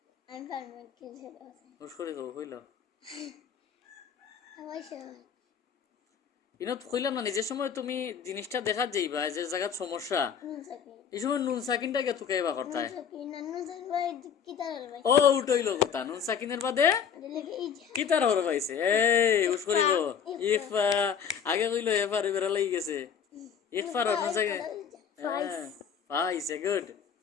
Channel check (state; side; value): quieter; right; 7.6 dB